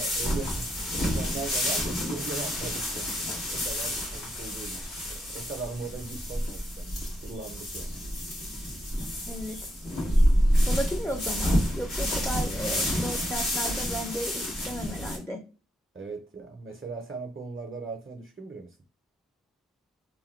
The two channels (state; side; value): normal; both; correlation 0.80